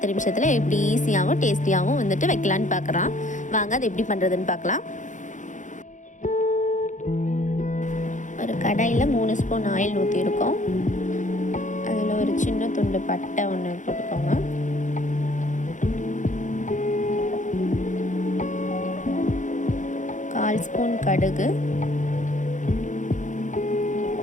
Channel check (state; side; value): late; right; 0.36 ms